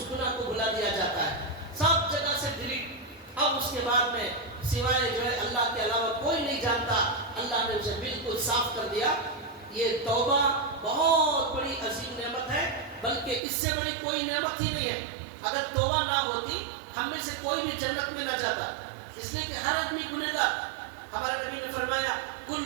گناہ کو بھلا دیا جاتا ہے، سب جگہ سے ڈیلیٹ۔ اب اس کے بعد میں سوائے جو ہے اللہ کے علاوہ کوئی نہیں جانتا، اللہ نے اسے بالکل صاف کر دیا۔ یہ توبہ بہت بڑی عظیم نعمت ہے، بلکہ اس سے بڑی کوئی نعمت ہی نہیں ہے۔ اگر توبہ نہ ہوتی ہم میں سے کوئی بھی جنت میں نہ جاتا، اس لیے کہ ہر آدمی گنہگار۔ ہمارے نبی نے فرمایا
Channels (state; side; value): drops out; left; at 13.4 s